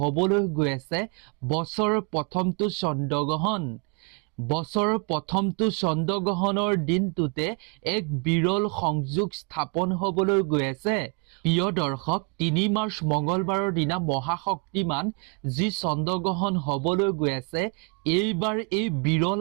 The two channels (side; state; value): left; quieter; 33.0 dB